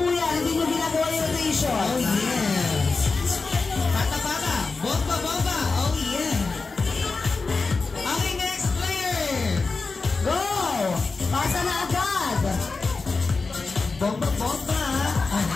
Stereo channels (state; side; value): quieter; right; 4.1 dB